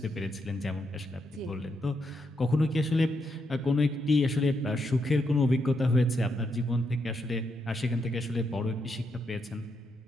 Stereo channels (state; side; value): normal; both; correlation 0.80